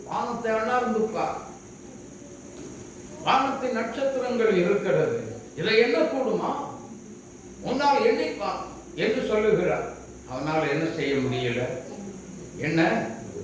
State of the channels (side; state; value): both; identical; correlation 1.00